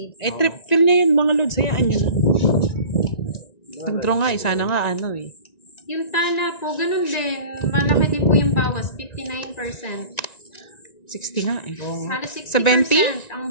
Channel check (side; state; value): right; late; 1.9 ms